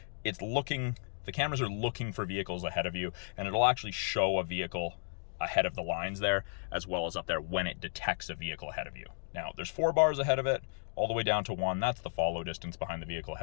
The cameras are looking for vehicles ahead of you, and it'll actually show a vehicle ahead of the lines there, as well as up there when it detects a vehicle ahead of you. Now, there's 4 bars ahead of it, all the way down to 1. That's the follow distance behind the vehicle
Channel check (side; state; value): right; silent; digital silence